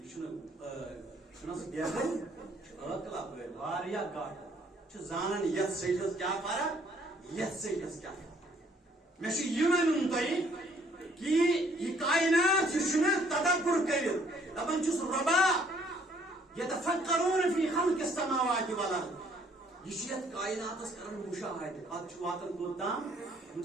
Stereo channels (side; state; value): both; normal; correlation 0.63